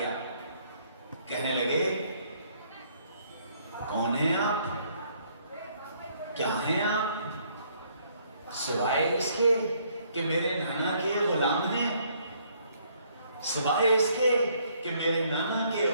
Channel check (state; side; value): inverted; both; correlation -0.66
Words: کہنے لگے کون ہیں آپ، کیا ہیں آپ، سوائے اس کے کہ میرے نانا کے غلام ہیں، سوائے اس کے کہ میرے نانا کے